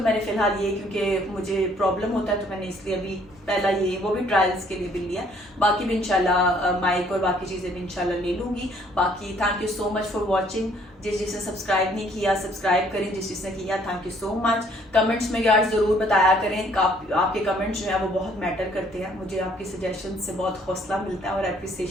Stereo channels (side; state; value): both; normal; correlation 0.62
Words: मैंने फ़िलहाल ये, क्योंकि मुझे प्रॉब्लम होता है, तो मैंने इसलिए अभी पहला ये, वो भी ट्रायल्स के लिए भी लिया, बाकी भी इंशाल्लाह माइक और बाकी चीज़ें भी इंशाल्लाह ले लूँगी। बाकी thank you so much for watching. जिसने सब्सक्राइब नहीं किया सब्सक्राइब करें, जिसने किया thank you so much. Comments में यार ज़रूर बताया करें, आपके कमेंट्स जो है वो बहुत मैटर करते हैं, मुझे आपकी सजेशन से बहुत हौसला मिलता है और